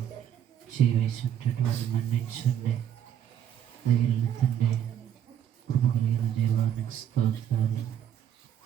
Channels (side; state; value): left; quieter; 9.9 dB